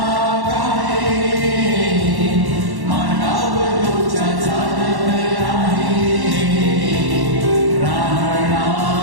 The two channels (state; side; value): late; left; 1.1 ms